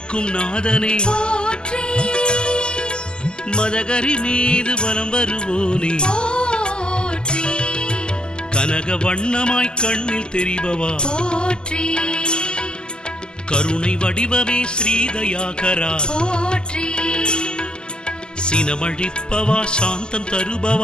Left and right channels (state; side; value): late; right; 0.046 ms